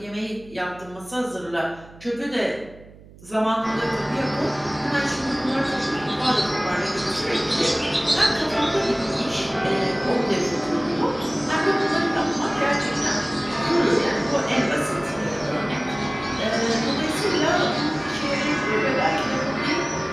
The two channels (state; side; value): noise; right; hum, 21 dB below the sound